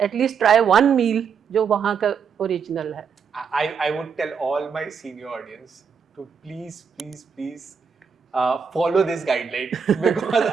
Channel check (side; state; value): left; quieter; 6.4 dB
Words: At least try one meal जो वहाँ का ओरिजिनल है. I would tell all my senior audience to please follow this guideline because